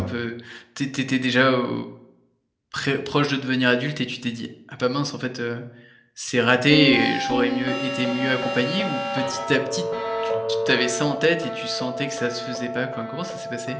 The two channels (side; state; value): both; identical; correlation 1.00